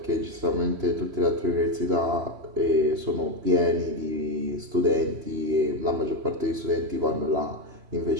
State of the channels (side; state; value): left; late; 3.0 ms